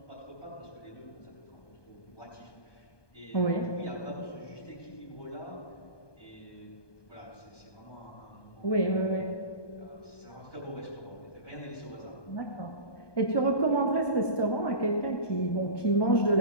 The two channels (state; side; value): late; right; 1.2 ms